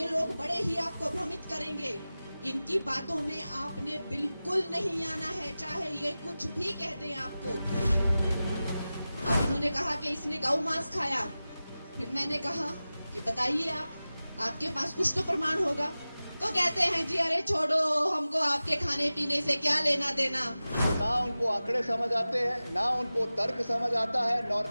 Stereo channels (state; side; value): inverted; both; correlation -0.96